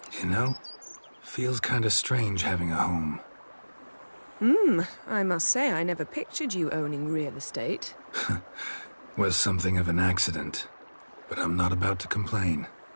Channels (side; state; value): both; inverted; correlation -1.00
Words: You know, feels kinda strange having a home. I must say I never pictured you owning real estate. Was something of an accident, but I'm not about to complain.